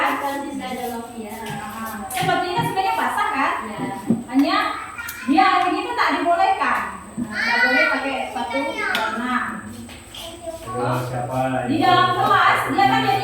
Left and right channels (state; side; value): identical; both; correlation 1.00